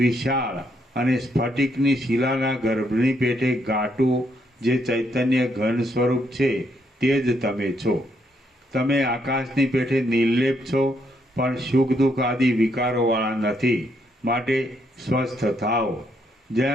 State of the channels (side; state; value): both; normal; correlation 0.75